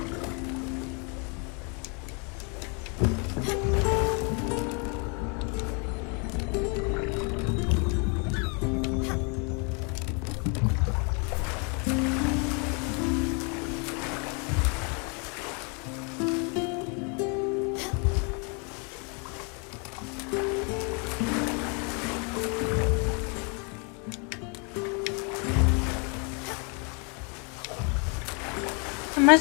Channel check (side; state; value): right; quieter; 35.6 dB